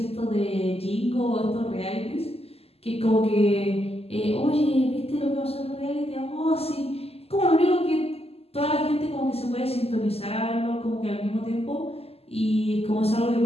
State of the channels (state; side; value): late; right; 0.29 ms